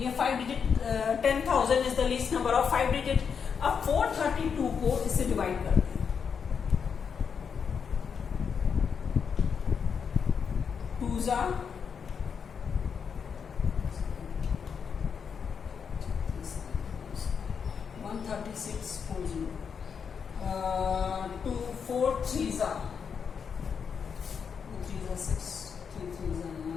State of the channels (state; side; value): quieter; right; 6.6 dB